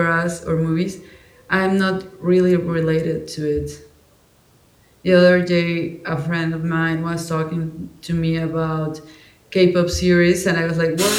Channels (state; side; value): identical; both; correlation 1.00